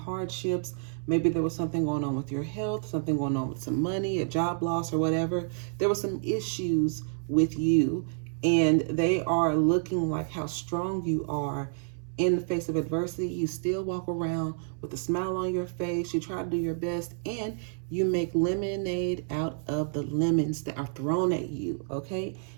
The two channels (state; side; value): silent; left; 59 dB below the other